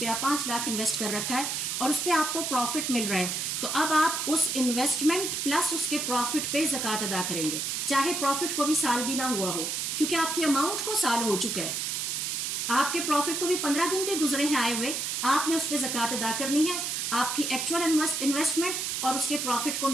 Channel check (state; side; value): noise; right; hiss, 1 dB below the sound